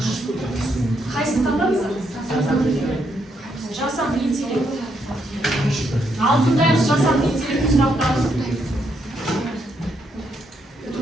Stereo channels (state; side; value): normal; both; correlation 0.77